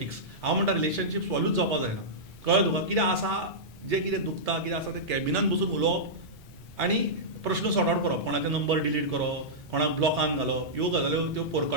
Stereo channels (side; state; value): right; noise; rumble, 23 dB below the sound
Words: हांव म्हणटा रिलेशनशीप स्पॉयलूच जावपाक जायना कळ्ळें तुका कितें आसा जें कितें दुखता कितें आसा तें कॅबिनान बसून उलोवप आनी प्रश्न सॉर्ट आउट करप कोणाचे नंबर डिलीट करप कोणाक ब्लॉकान घालप ह्यो गजाल्यो त्यो